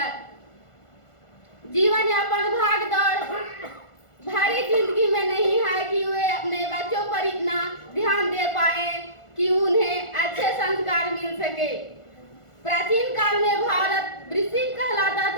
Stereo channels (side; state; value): right; late; 1.5 ms